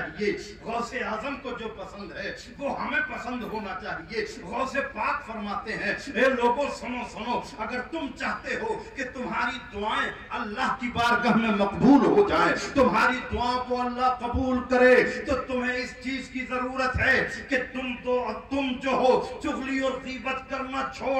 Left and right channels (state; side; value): identical; both; correlation 1.00